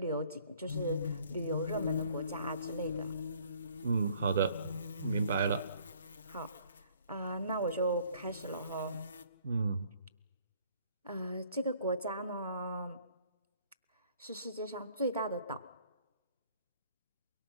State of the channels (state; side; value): inverted; both; correlation -0.59